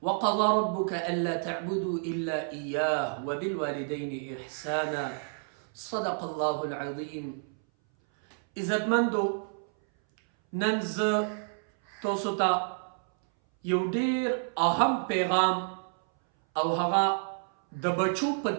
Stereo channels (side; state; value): left; silent; 58 dB below the other